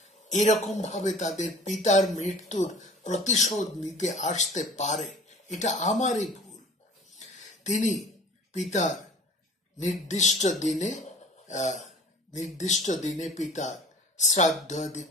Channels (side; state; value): both; normal; correlation 0.46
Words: এরকম ভাবে তাদের পিতার মৃত্যুর প্রতিশোধ নিতে আসতে পারে। এটা আমারই ভুল। তিনি পিতার নির্দিষ্ট দিনে পিতার শ্রাদ্ধ আদি